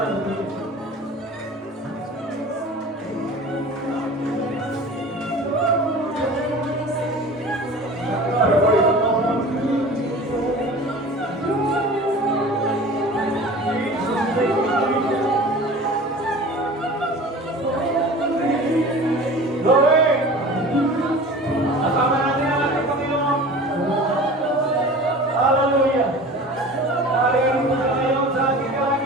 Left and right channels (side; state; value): both; normal; correlation 0.39